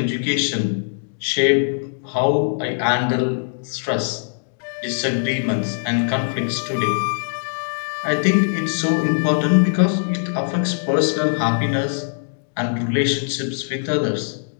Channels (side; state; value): right; silent; digital silence